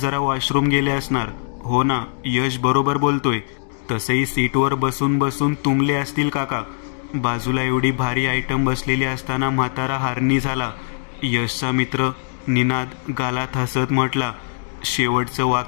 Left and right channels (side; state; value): right; silent; digital silence